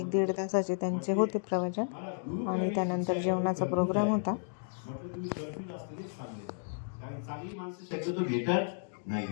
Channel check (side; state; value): right; silent; digital silence